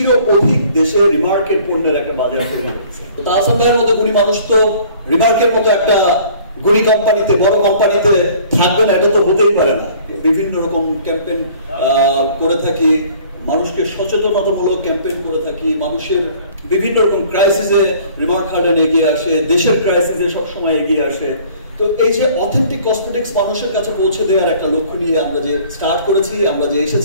অধিক দেশে রিমার্কের পণ্যের একটা বাজার তৈরি হচ্ছে। তাহসান ভাইয়ের মতো গুণী মানুষ তো রিমার্কের মতো একটা গুণী কোম্পানিতে, বড় কোম্পানিতে থাকবে না, এটা তো হতেই পারে না। বিভিন্ন রকম ক্যাম্পেইন করে থাকি, মানুষকে সচেতনতামূলক ক্যাম্পেইন করে থাকি, মানুষের বিভিন্ন রকম ক্রাইসিসে রিমার্ক হার্ডেন এগিয়ে আসে, দেশের ক্রাইসিসে সবসময় এগিয়ে আসে। তো এই যে অথেন্টিক কসমেটিক্স মানুষের কাছে পৌঁছে দেওয়ার একটা লক্ষ্য নিয়ে আমরা যে স্টার্ট করেছি, আমরা যে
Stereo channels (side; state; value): both; inverted; correlation -0.53